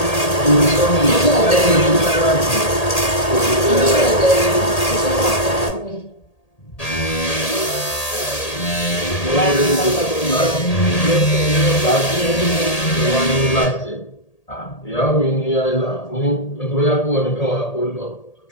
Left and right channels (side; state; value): right; late; 1.8 ms